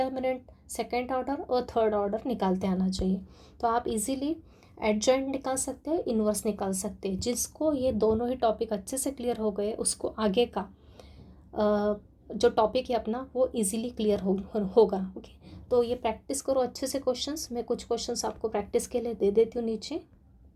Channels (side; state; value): both; identical; correlation 1.00